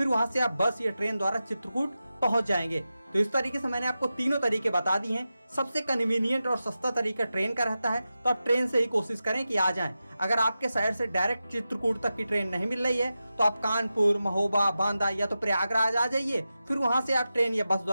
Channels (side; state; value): both; inverted; correlation -0.92